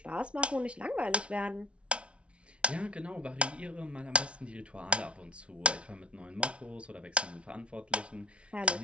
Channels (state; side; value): late; left; 0.060 ms